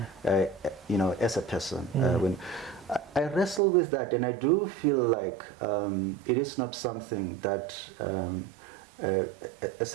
as a person. When I wrestle with that, and I do feel like it is not something that, as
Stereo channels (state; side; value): drops out; left; at 3.6 s